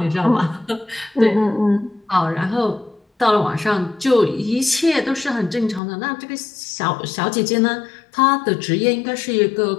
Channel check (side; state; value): right; drops out; at 5.8 s